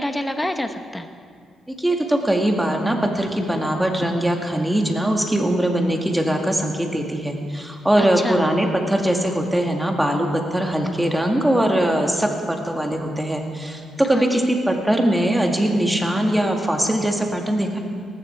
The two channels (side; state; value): both; normal; correlation 0.89